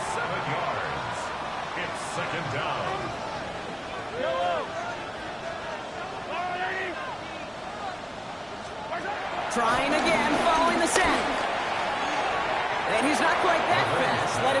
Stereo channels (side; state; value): both; identical; correlation 1.00